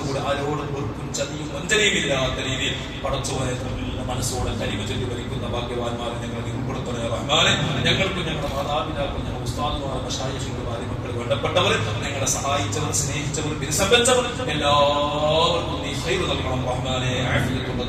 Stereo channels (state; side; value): identical; both; correlation 1.00